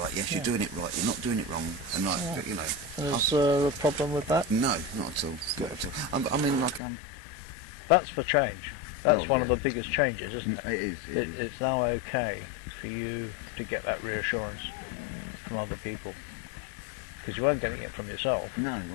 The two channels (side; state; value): right; drops out; at 6.8 s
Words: Yes, you're doing it right. You're not doing it wrong." And like, you know, is there a problem with that? No, not at all. Not at all. I mean, like, that's the change. That's one of the biggest changes, isn't it? It is. It's now okay for you to get that reassurance from other people, because you weren't getting it from yourself. No,